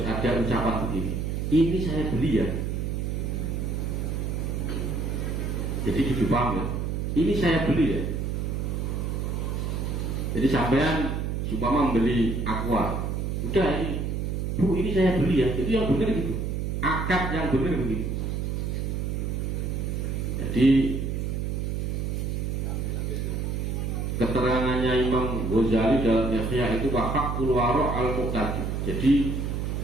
ada ucapan begini. Ini saya beli ya. Jadi gitu paham ya. Ini saya beli ya. Jadi sampean supaya membeli aqua. Udah ini, Bu ini saya beli ya. Itu yang benar gitu. Akad yang benar begitu. Jadi keterangannya Imam Ghazali dalam Ihya itu wafaqul waro' al-muqtadi. Jadi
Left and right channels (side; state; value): right; noise; hum, 1 dB below the sound